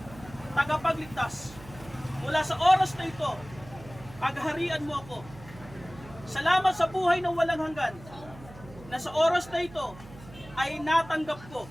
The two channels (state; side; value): noise; right; hum, 18 dB below the sound